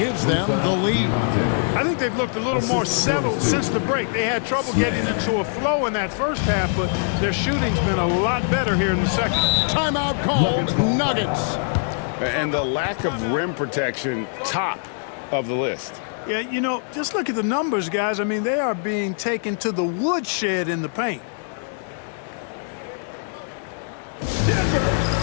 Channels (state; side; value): silent; right; 64 dB below the other